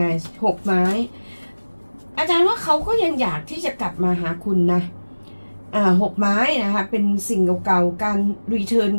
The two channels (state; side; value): inverted; both; correlation -1.00